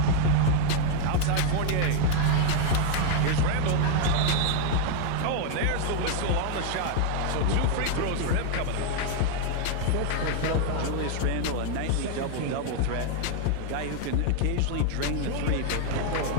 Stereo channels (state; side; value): different; both; correlation 0.00